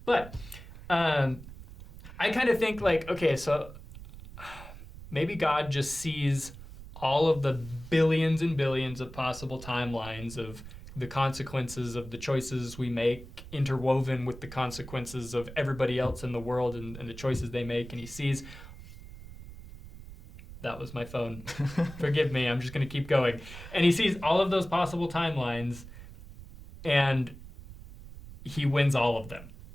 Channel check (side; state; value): right; noise; rumble, 15 dB below the sound